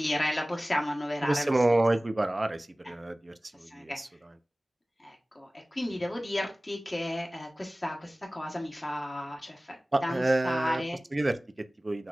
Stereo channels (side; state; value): both; normal; correlation 0.98